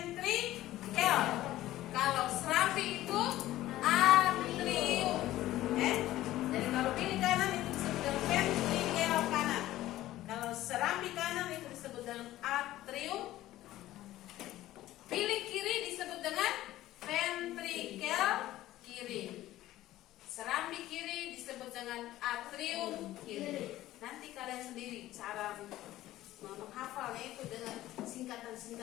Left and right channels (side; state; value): right; quieter; 15.2 dB